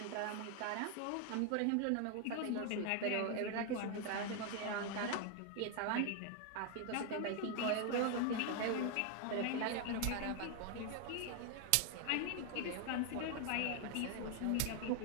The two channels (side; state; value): both; different; correlation 0.01